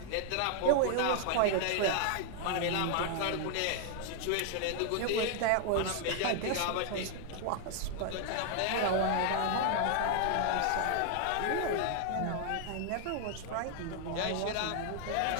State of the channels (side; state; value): both; different; correlation 0.00